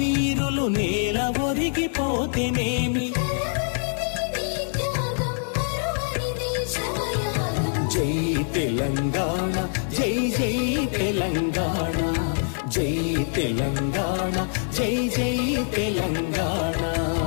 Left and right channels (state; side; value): silent; right; digital silence